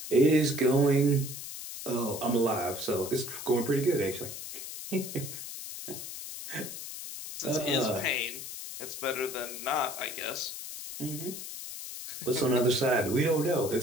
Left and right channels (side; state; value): left; noise; hiss, 9 dB below the sound